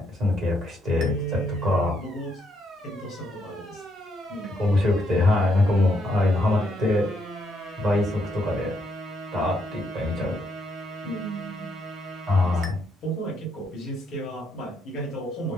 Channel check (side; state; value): both; normal; correlation 0.75